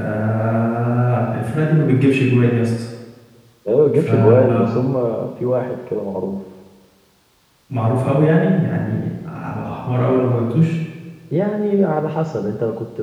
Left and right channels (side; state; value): both; identical; correlation 1.00